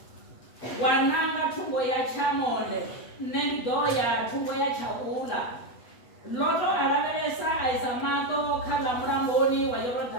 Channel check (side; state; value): right; late; 8.1 ms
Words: wananga chungo ya cha monde nendo ya chungo ya cha ula Loto arabelesa aisamato kala mramboni wa